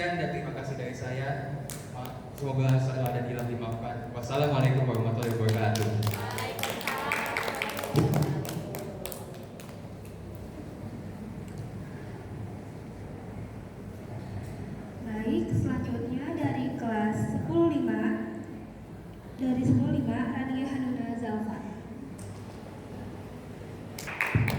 dan terima kasih dari saya. Semoga salah dan hilang dimaafkan. Wassalamualaikum warahmatullahi wabarakatuh. Baik, selanjutnya dari kelas 105 dari 105 Rania Hanuna Zalfa.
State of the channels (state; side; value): identical; both; correlation 1.00